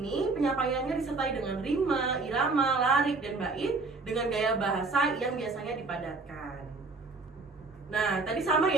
ini penyampaiannya disertai dengan rima, irama, larik, dan bait dengan gaya bahasa yang biasanya dipadatkan. Nah, tadi sama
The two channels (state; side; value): quieter; left; 3.8 dB